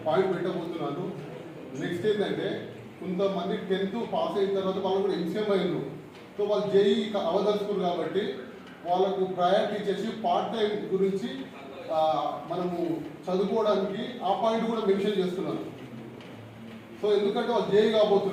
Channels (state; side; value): identical; both; correlation 1.00